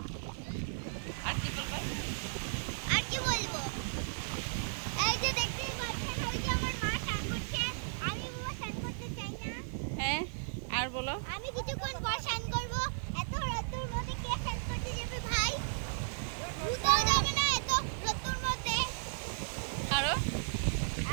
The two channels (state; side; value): silent; left; 54 dB below the other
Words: আর কি বলবো? আর কি বলবো, এই যে দেখতেই পাচ্ছেন, ওই যে আমার মা স্নান করছে। আমি বাবা স্নান করতে চাই না। হ্যাঁ, আর বলো। আমি কিছুক্ষণ পর স্নান করবো। এত রোদ্দুর মধ্যে কে স্নান করতে যাবে ভাই? ভূতও যাবে না এত রোদ্দুর মধ্যে। আরো